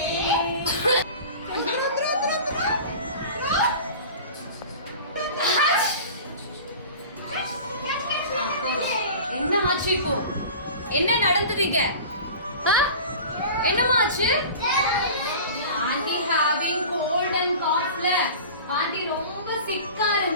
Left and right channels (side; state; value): both; inverted; correlation -0.37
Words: என்ன ஆச்சு இப்போ? என்ன நடந்ததுங்க? என்னமா ஆச்சு? ஆண்டி ஹேவிங் கோல்ட் அண்ட் காஃப்ல ஆண்டி ரொம்ப சிக்கா